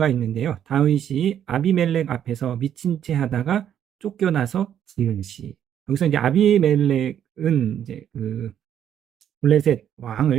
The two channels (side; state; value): left; quieter; 9.7 dB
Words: 있는데요. 다윗이 아비멜렉 앞에서 미친 채 하다가 쫓겨나서 지은 시. 여기서 이제 아비멜렉은 이제 그 블레셋